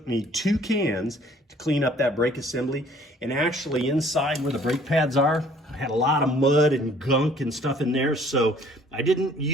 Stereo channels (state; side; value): normal; both; correlation 0.57